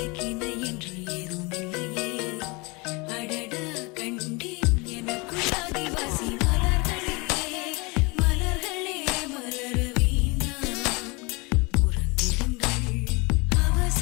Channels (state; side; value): quieter; right; 27.4 dB